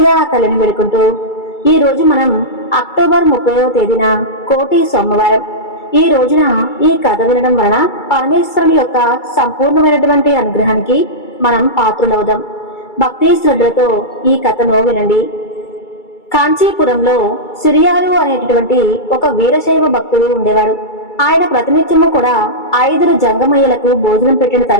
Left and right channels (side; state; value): right; late; 2.3 ms